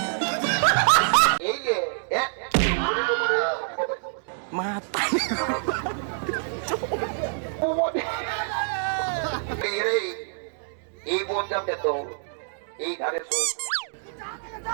এই যে মাথা এই বোন যাবে তো এই ধারে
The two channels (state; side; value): silent; left; digital silence